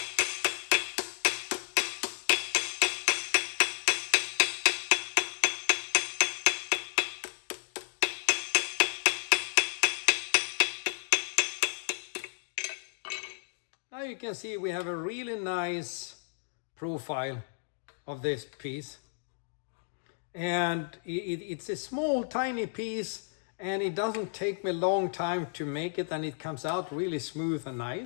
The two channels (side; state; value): right; silent; digital silence